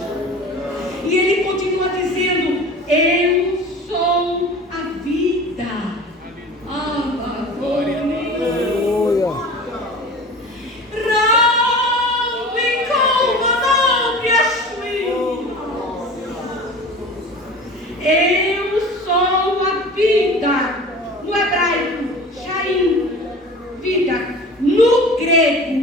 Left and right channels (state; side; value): normal; both; correlation 0.38